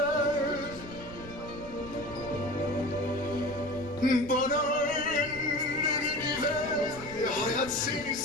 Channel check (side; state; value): right; noise; rumble, 15 dB below the sound